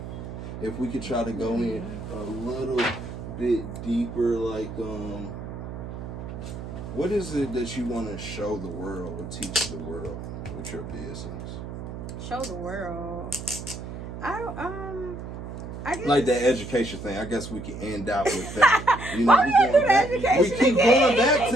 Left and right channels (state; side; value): noise; right; hum, 9 dB below the sound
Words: if we could try to go in a little bit deeper, like what is it that you want to show the world or teach the world with your business? Show the world. I guess. Like that education thing. I guess we can end out with that. Why we gotta do the education We keep again? going back